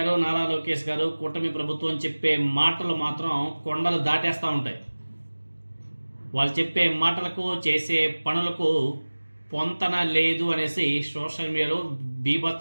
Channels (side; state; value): both; inverted; correlation -1.00